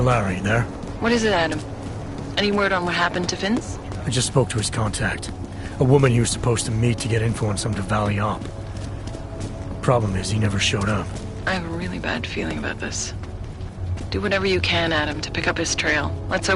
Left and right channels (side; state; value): both; identical; correlation 1.00